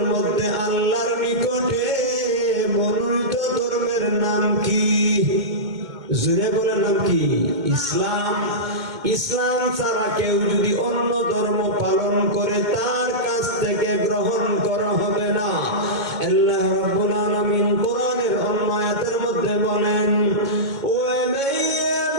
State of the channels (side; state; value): left; late; 2.2 ms